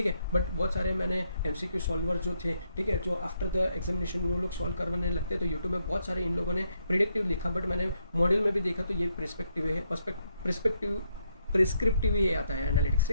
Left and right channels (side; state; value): both; inverted; correlation -0.77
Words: है। बट बहुत सारे मैंने एमसीक्यू सॉल्वर जो थे, ठीक है, जो आफ्टर द एग्जामिनेशन वो लोग सॉल्व करवाने लगते हैं, तो यूट्यूब में बहुत सारे इन लोगों ने प्रिडिक्टिव लिखा, बट मैंने मॉडल में भी देखा तो ये प्रिस्पेक्टिव है, प्रिस्क्रिप्टिव ही आता है एनालिटिक्स।